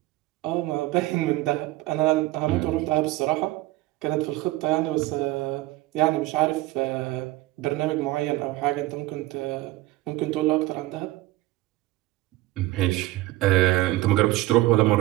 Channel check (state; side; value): quieter; left; 18.0 dB